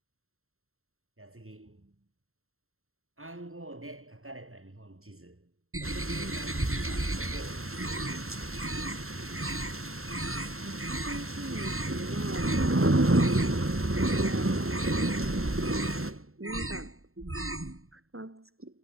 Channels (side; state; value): left; late; 0.62 ms